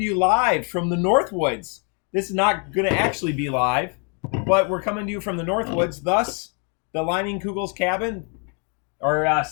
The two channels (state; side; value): quieter; right; 38.2 dB